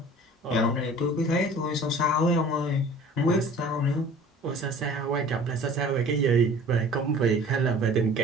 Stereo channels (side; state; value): both; normal; correlation 0.46